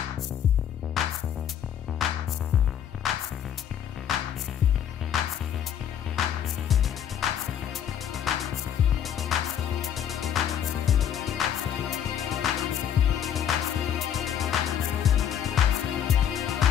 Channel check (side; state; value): right; quieter; 9.4 dB